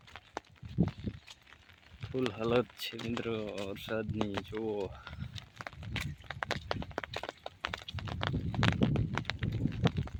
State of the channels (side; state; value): both; identical; correlation 1.00